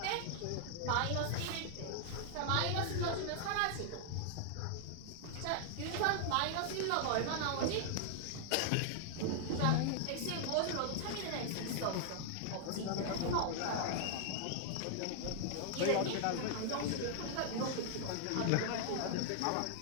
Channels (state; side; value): different; both; correlation 0.00